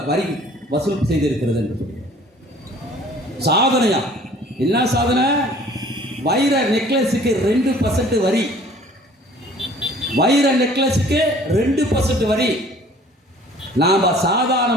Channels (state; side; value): normal; both; correlation 0.52